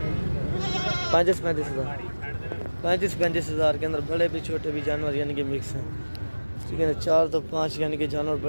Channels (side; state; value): both; inverted; correlation -1.00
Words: 35 हज़ार। 35 हज़ार के अंदर बड़े भी छोटे भी जानवर यानी कि मिक्स हैं, ठीक है ना। 4 तो 5 यानी कि जानवर